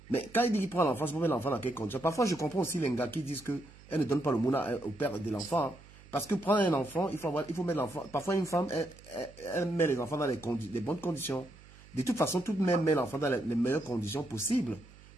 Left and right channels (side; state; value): right; noise; hum, 22 dB below the sound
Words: Mais quand il dit qu'il prend l'enfant, c'est pour mettre l'enfant dans quel condition. Parfois, je comprends aussi les gars qui disent qu'elle ne donne pas le mouna au père de l'enfant. Hein. Parce que prendre un enfant, il faut mettre l'enfant. Parfois, une femme, elle met les enfants dans les bonnes conditions. De toute façon, toute mère met l'enfant dans les meilleures conditions possibles.